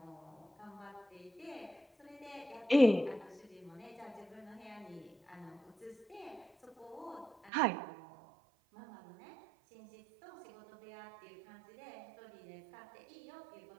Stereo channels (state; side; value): drops out; left; at 7.5 s